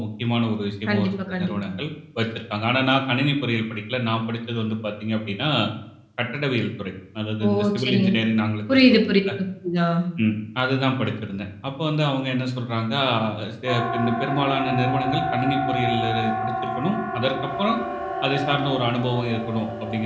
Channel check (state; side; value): identical; both; correlation 1.00